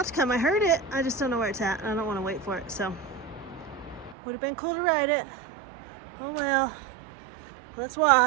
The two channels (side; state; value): left; drops out; at 4.2 s